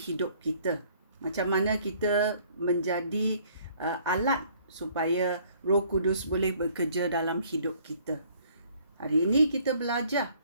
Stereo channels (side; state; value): both; inverted; correlation -0.60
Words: kita. Macam mana kita menjadi alat supaya Roh Kudus boleh bekerja dalam hidup kita. Hari ini kita belajar